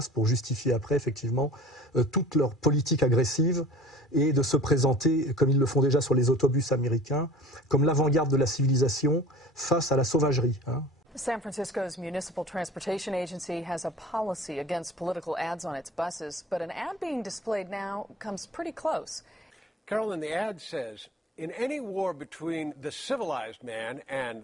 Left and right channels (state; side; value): normal; both; correlation 0.43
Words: pour justifier après, effectivement, toute leur politique agressive et de se présenter, comme ils le font déjà sur les autobus américains, comme l'avant-garde de la civilisation face à la sauvagerie. Hein. San Francisco's Municipal Transportation Agency has a policy against political ads on its buses, but an ad being displayed now comes pretty close. Carolyn, the ad says, in any war between the civilized man and